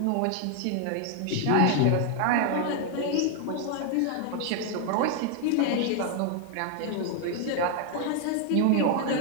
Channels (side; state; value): both; different; correlation 0.00